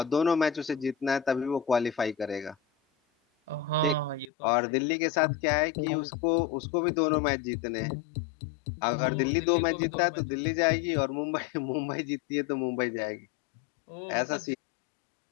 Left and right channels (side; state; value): right; drops out; at 4.3 s